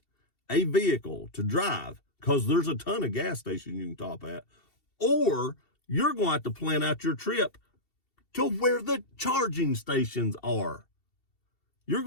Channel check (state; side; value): late; right; 2.7 ms